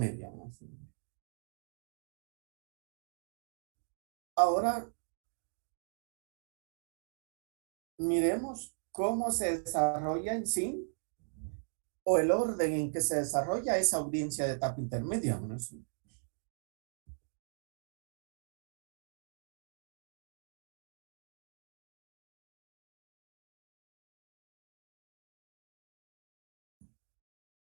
Ahora, miremos cómo se desarrolla en sí o el orden en que se desarrolla esa audiencia de etapa intermedia.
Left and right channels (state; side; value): silent; left; digital silence